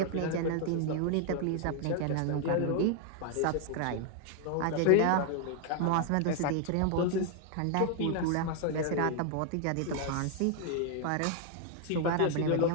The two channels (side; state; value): both; different; correlation 0.00